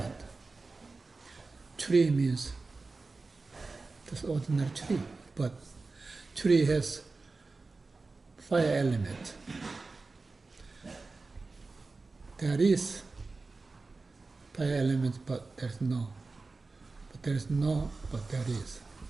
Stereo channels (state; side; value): quieter; left; 3.8 dB